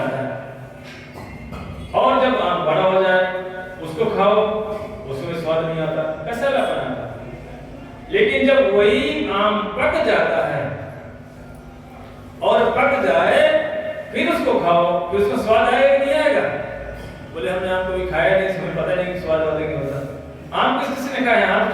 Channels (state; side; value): identical; both; correlation 1.00